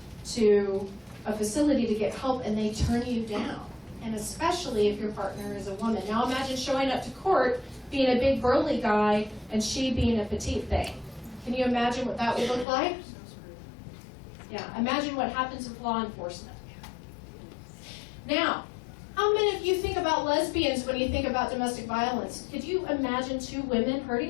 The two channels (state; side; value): drops out; right; at 12.7 s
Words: to a facility to get help and they turn you down, and especially if your partner is a woman. Now imagine showing up to court being a big burly guy and she being a petite thing. Can you imagine what that would look like? Yeah, imagine what happens with law enforcement. Now, how many of you think about lesbians when you think about domestic violence? Could you imagine two women